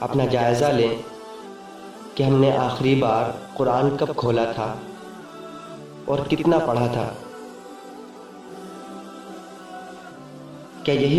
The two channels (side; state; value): both; identical; correlation 1.00